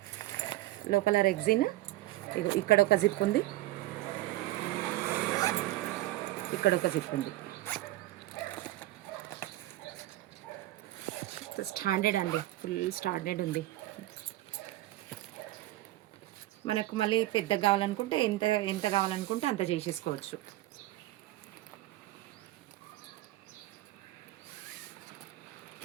లోపల రెగ్జిన్. ఇగో ఇక్కడ ఒక జిప్ ఉంది, ఇక్కడ ఒక జిప్ ఉంది. స్టాండర్డ్ అండి, ఫుల్ స్టాండర్డ్ ఉంది. మనకు మళ్ళీ పెద్దగా కావాలనుకుంటే ఎంత ఎంత కావాలనుకుంటే అంత చేసేసుకోవచ్చు.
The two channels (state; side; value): quieter; left; 16.7 dB